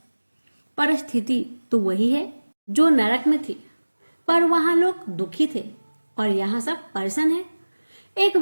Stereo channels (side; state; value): both; inverted; correlation -1.00